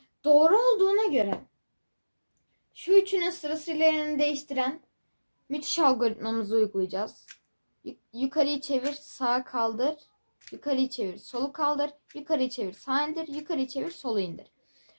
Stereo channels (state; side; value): inverted; both; correlation -1.00